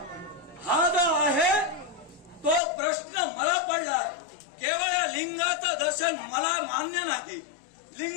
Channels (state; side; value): drops out; right; at 2.6 s